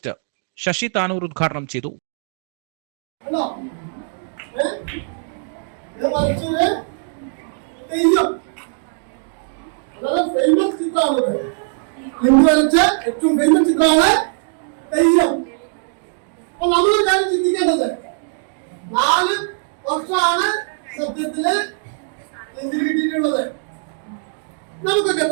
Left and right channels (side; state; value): left; silent; 59 dB below the other